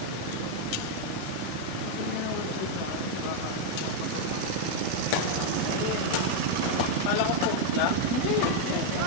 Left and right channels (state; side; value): different; both; correlation 0.01